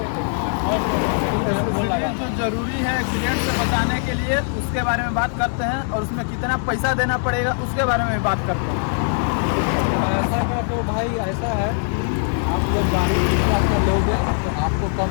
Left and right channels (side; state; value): right; silent; 60 dB below the other